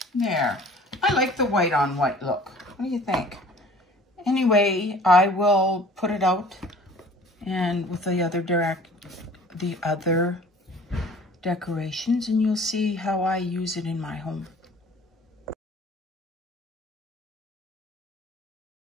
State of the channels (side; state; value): both; normal; correlation 0.49